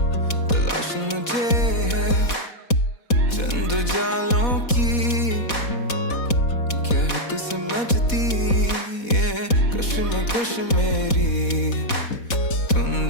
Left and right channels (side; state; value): right; late; 4.1 ms